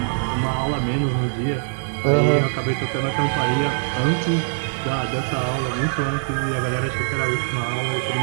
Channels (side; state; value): left; silent; digital silence